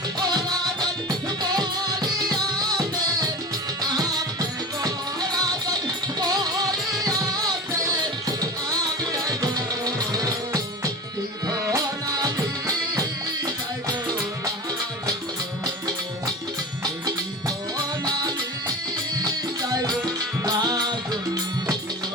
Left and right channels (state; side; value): normal; both; correlation 0.31